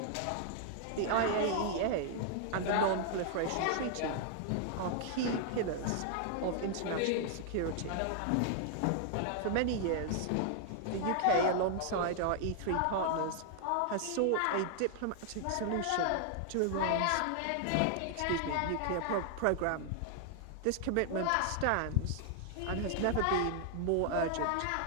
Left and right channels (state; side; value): different; both; correlation 0.00